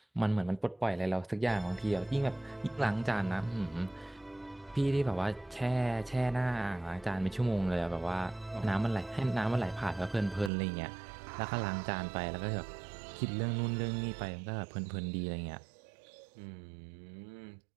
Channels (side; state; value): left; drops out; at 10.5 s